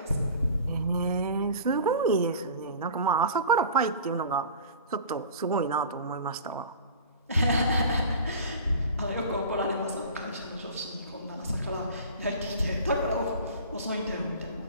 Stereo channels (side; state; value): both; inverted; correlation -0.40